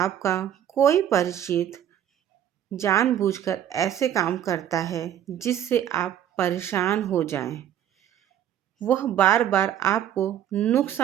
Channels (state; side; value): quieter; left; 10.5 dB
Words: कोई परिचित जानबूझकर ऐसे काम करता है जिससे आप परेशान हो जाएं, वह बार बार आपको